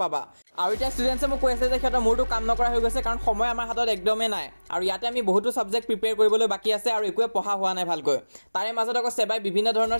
পাবা আৰু এতিয়া ষ্টুডেণ্টছে মোক কৈ আছে যে সিহঁতৰ মোৰটো কাম নকৰা হৈ গৈছে কাৰণ সময় আমাৰ হাতত একদমেই নাই আৰু ইয়াতে আমি বহুতো ছাবজেক্ট প্ৰিপেয়াৰ কৰিবলৈ বাকী আছে আৰু একোৱে পঢ়া হোৱা নাই ভালকৈ তাৰে মাজত আকৌ সেবাই বিভিন্ন ধৰণৰ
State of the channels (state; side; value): inverted; both; correlation -1.00